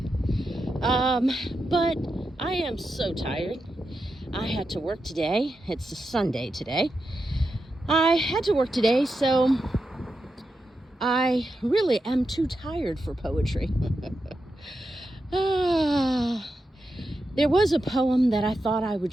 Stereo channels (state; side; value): normal; both; correlation 0.88